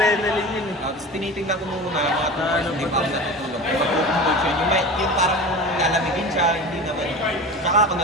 yun eh. Tapos tinitingnan ko muna mga Ano hindi ba pa ako natutulog. Matutulog siya. Yung parang lalamigin siya, hindi naman. Tsaka ako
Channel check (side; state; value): both; normal; correlation 0.32